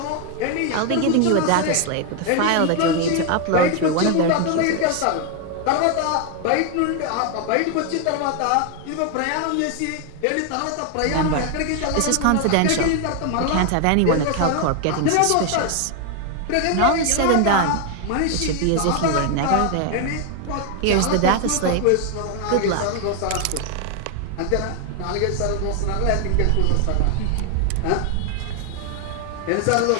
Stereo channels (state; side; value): different; both; correlation 0.01